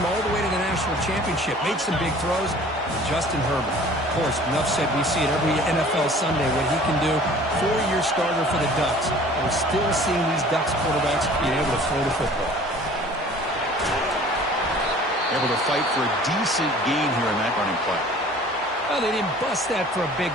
all the way to the national championship, made some big throws. Justin Herbert. Of course, enough said, we see it every NFL Sunday what he can do. 4-year starter for the Ducks. We're still seeing these Ducks quarterbacks being able to throw the football. Able to fight for a decent gain here in that running play. Well, they didn't bust that for a big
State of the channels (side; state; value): both; normal; correlation 0.48